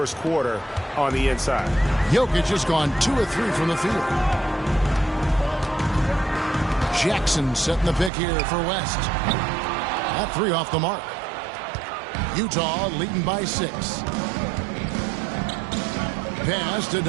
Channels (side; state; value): left; drops out; at 8.1 s